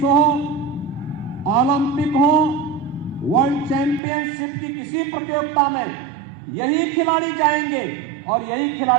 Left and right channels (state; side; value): drops out; left; at 4.0 s